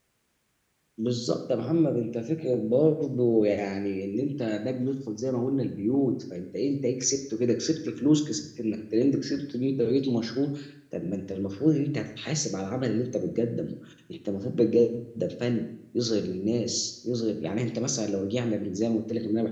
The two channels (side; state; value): both; identical; correlation 1.00